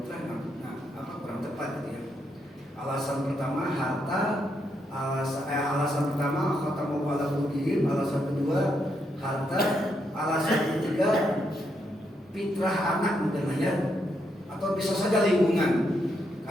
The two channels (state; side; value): normal; both; correlation 0.79